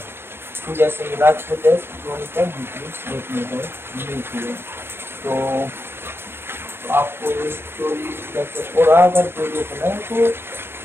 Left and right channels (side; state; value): left; late; 0.11 ms